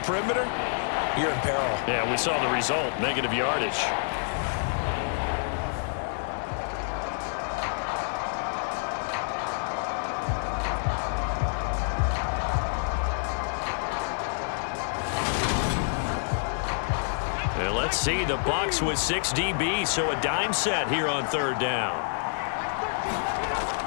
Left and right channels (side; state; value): right; silent; digital silence